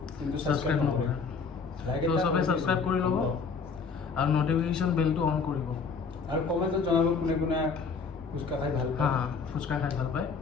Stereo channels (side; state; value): right; quieter; 5.2 dB